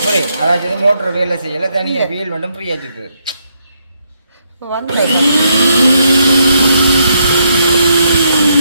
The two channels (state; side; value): inverted; both; correlation -0.76